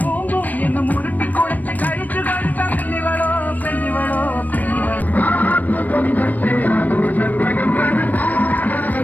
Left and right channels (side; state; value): right; late; 0.082 ms